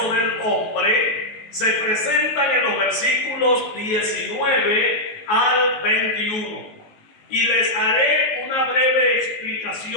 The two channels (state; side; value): late; right; 19 ms